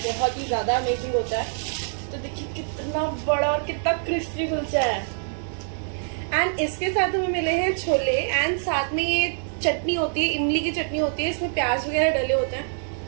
ही ज्यादा अमेजिंग होता है। तो देखिए कितना बड़ा और कितना क्रिस्पी कुलचा है। एंड इसके साथ हमें मिले हैं छोले, एंड साथ में ये चटनी होती है, इमली की चटनी होती है, इसमें प्याज वगैरह डले होते हैं,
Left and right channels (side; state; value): left; silent; 62 dB below the other